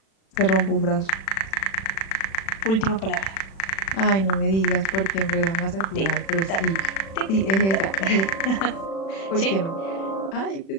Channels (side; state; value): right; late; 36 ms